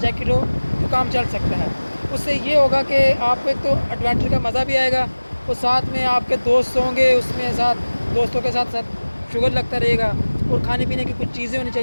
हो तो काम चल सकता है। उससे ये होगा कि आपको एक तो एडवेंचर का मज़ा भी आएगा और साथ में आपके दोस्त होंगे, उसमें साथ दोस्तों के साथ साथ शुगर लगता रहेगा और खाने पीने की कुछ चीज़ें होनी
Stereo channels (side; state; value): both; inverted; correlation -1.00